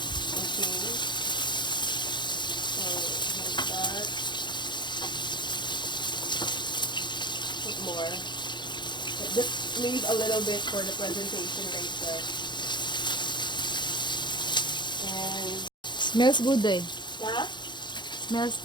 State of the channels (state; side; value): late; right; 0.22 ms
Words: Okay. So, like that. Put more. Just leave a little bit for the presentation later. And Smells good eh. yeah. Smells